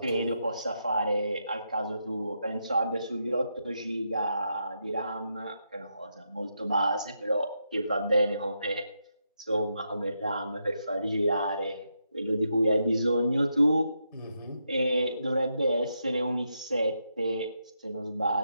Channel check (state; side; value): inverted; both; correlation -0.83